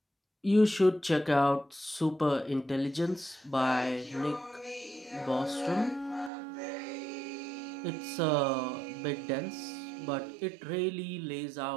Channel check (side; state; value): left; drops out; at 6.3 s